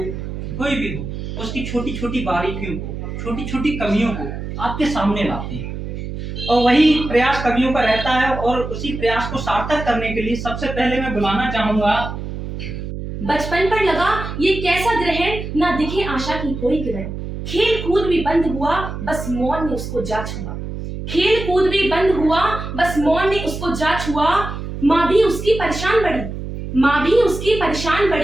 कोई भी हो, उसकी छोटी छोटी बारीकियों को, छोटी छोटी कमियों को आपके सामने लाते हैं, और वही प्रयास कवियों का रहता है। और उसी प्रयास को सार्थक करने के लिए सबसे पहले मैं बुलाना चाहूंगा। बचपन पर लगा ये कैसा ग्रहण, ना दिखे आशा की कोई किरण। खेल कूद भी बंद हुआ, बस मौन ने उसको जा छुआ। खेल कूद भी बंद हुआ, बस मौन ने उसको जा छुआ। माँ भी उसकी परेशान पड़ी, माँ भी उसकी परेशान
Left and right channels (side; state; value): right; noise; hum, 7 dB below the sound